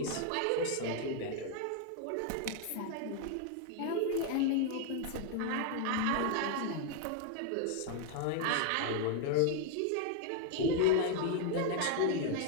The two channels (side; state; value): both; different; correlation 0.00